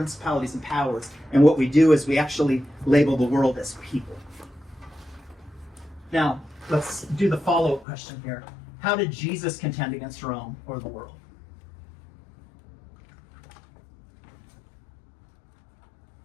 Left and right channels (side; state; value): right; drops out; at 7.9 s